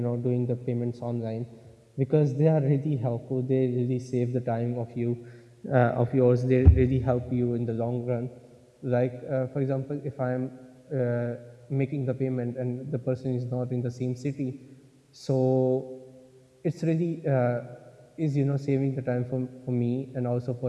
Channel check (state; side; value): identical; both; correlation 1.00